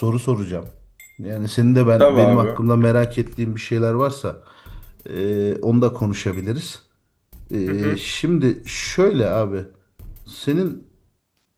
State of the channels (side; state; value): both; identical; correlation 1.00